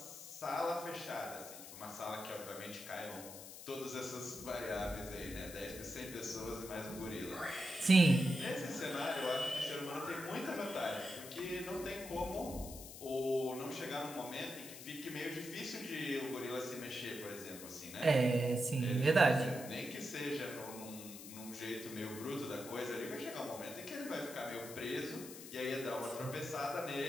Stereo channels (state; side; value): noise; left; hiss, 12 dB below the sound